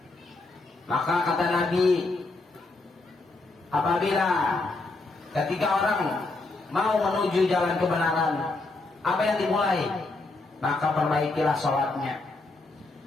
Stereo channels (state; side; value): quieter; right; 3.3 dB